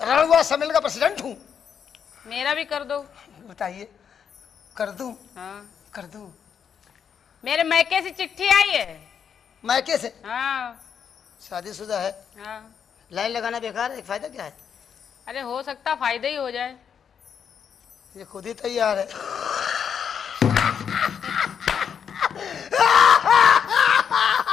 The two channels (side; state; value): right; quieter; 7.6 dB